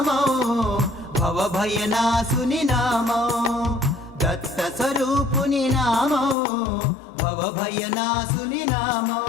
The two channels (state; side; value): drops out; right; at 6.4 s